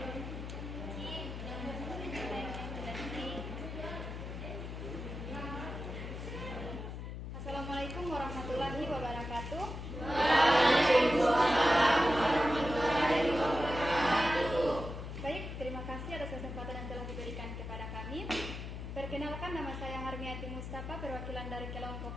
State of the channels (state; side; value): noise; left; hum, 7 dB below the sound